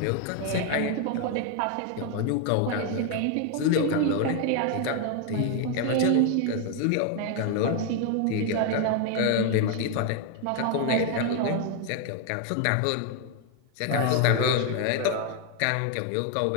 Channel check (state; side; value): different; both; correlation 0.01